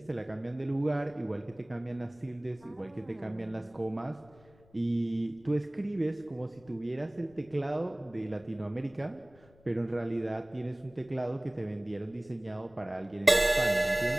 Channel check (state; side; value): noise; left; rumble, 27 dB below the sound